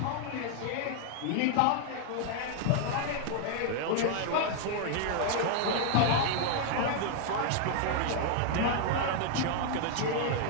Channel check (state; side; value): different; both; correlation 0.00